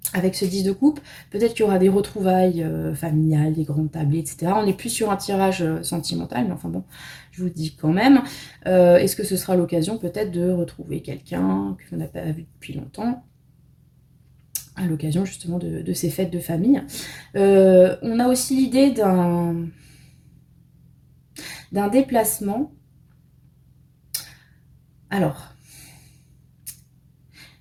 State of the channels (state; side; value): identical; both; correlation 1.00